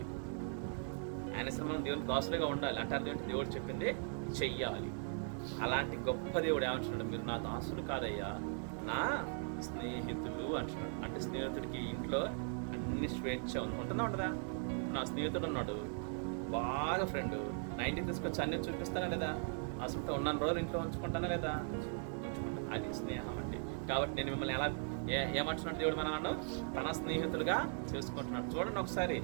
ఆయన మనం దేవునికి దాసులుగా ఉండాలి. అంటే అదేంటి? దేవుడు చెప్పింది చెయ్యాలి. అలాంటి గొప్ప దేవుడు ఏమంటున్నాడు? మీరు నా దాసులు కాదయ్యా, నా స్నేహితులు అంటున్నాడు. అంటే స్నేహితుడికి ఇంట్లో అన్ని స్వేచ్ఛ ఉంటుందా ఉండదా? నా స్నేహితుడు ఉన్నాడు, బాగా ఫ్రెండ్, 90 తీసుకొచ్చి అన్ని చూపిస్తానా లేదా? అసలు ఉన్నాను రోజులు ఇంట్లో ఉంచుకుంటానా లేదా? ఉంచుకుంటాను. అది స్నేహం అంటే. కాబట్టి నేను మిమ్మల్ని ఏమంటున్నాడు దేవుడు మనల్ని తన స్నేహితులుగా చేసుకుంటున్నాడు. చూడండి ఒకసారి,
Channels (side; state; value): left; silent; 52 dB below the other